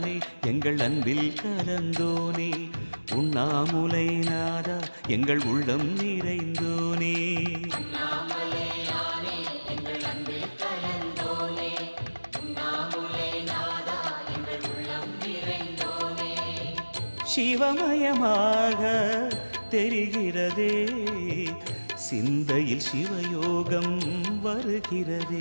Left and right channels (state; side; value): inverted; both; correlation -1.00